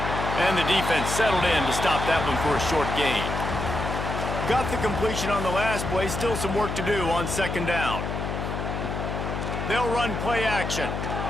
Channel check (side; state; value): left; noise; hum, 4 dB below the sound